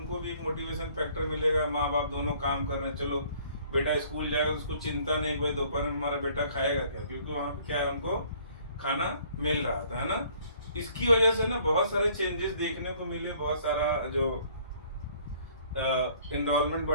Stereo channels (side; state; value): both; inverted; correlation -0.58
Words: भी एक मोटिवेशन फैक्टर मिलेगा, माँ बाप दोनों काम कर रहे हैं, चलो बेटा स्कूल जाएगा तो उसको चिंता नहीं कि भाई दोपहर में हमारा बेटा खाएगा क्या, क्योंकि वहाँ पे क्या है उनको खाना मिल रहा था, है ना। इसकी वजह से ना बहुत सारे चेंजेस देखने को मिले, बहुत सारा जो एनरोलमेंट